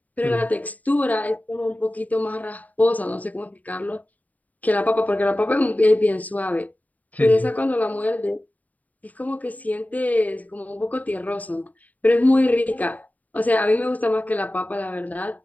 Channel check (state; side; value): late; right; 0.074 ms